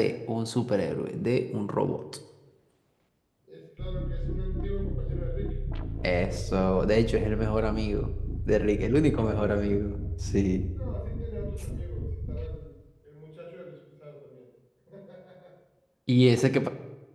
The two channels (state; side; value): identical; both; correlation 1.00